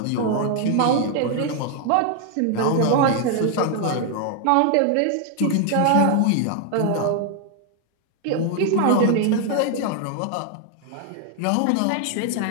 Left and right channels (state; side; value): different; both; correlation 0.00